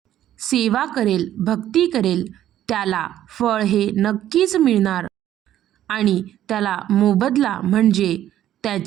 सेवा करेल, भक्ती करेल, त्याला फळ हे नक्कीच मिळणार आणि त्याला मोबदला म्हणजे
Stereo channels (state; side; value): quieter; left; 12.0 dB